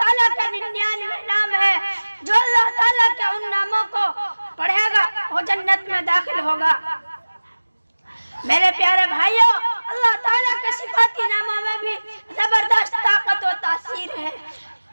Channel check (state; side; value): inverted; both; correlation -1.00